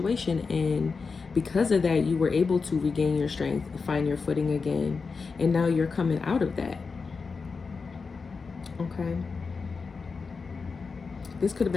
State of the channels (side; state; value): right; quieter; 4.8 dB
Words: And because of that, you were able to regain your strength, find your footing again. And now you're coming out of that. Okay. This could have